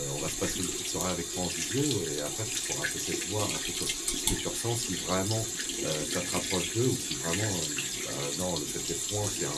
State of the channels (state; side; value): identical; both; correlation 1.00